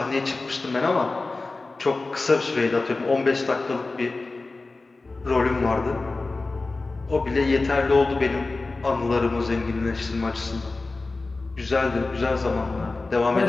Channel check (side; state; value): right; quieter; 3.5 dB